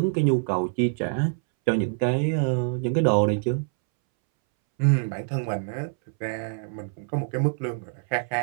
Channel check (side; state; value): left; silent; 61 dB below the other